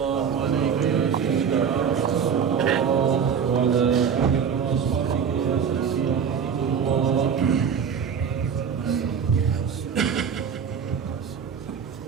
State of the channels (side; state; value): left; quieter; 7.1 dB